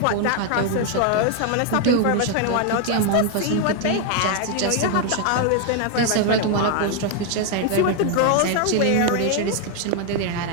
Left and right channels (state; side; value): different; both; correlation 0.01